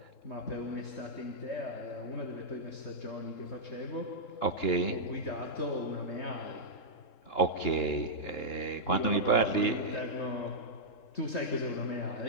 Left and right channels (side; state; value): right; late; 3.7 ms